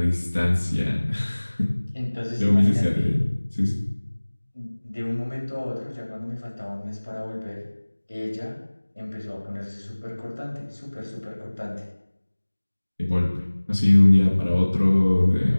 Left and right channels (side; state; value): both; inverted; correlation -1.00